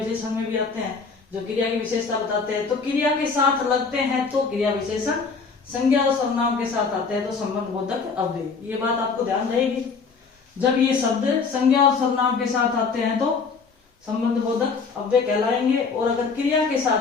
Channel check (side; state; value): right; quieter; 5.0 dB